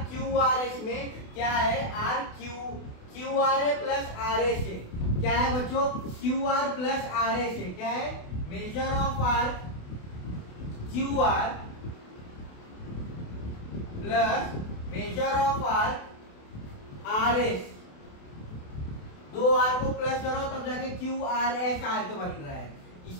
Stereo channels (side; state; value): right; late; 28 ms